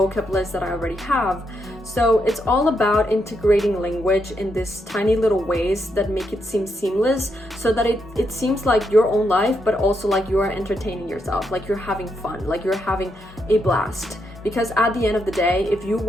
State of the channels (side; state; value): both; normal; correlation 0.80